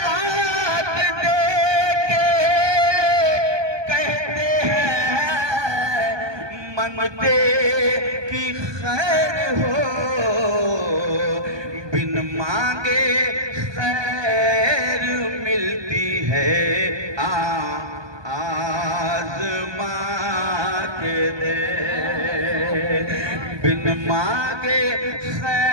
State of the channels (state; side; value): late; left; 1.2 ms